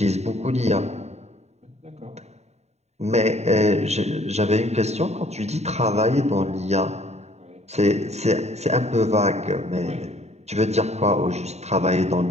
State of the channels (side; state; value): left; late; 0.32 ms